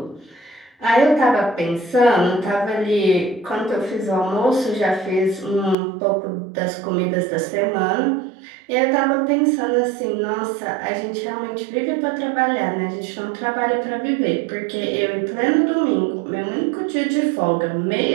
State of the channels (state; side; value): drops out; left; at 5.8 s